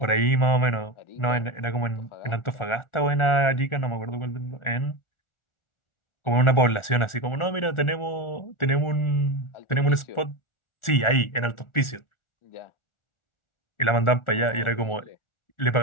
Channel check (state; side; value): late; right; 1.4 ms